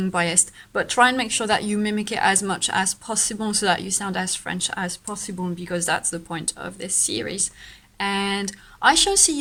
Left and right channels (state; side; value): identical; both; correlation 1.00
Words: biased, but try and make sure that you mimic it as much as possible so that you sound as French as possible, because that's the point of this series. And I shall see